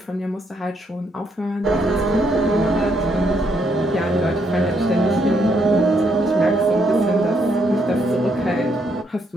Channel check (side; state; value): both; normal; correlation 0.74